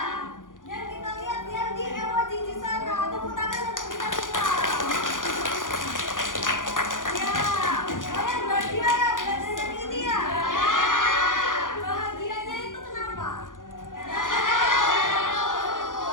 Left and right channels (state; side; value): late; right; 0.89 ms